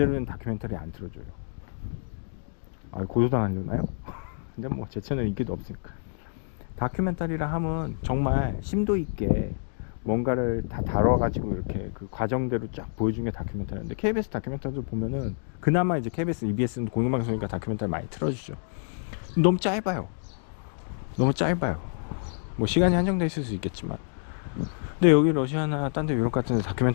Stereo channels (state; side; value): silent; right; digital silence